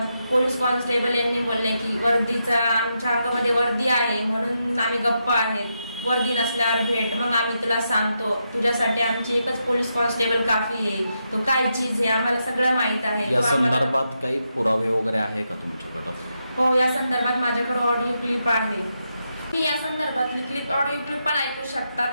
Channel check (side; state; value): both; inverted; correlation -0.84